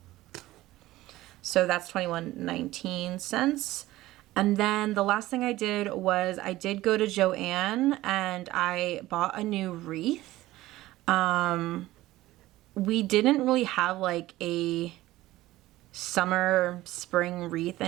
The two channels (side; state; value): left; quieter; 16.9 dB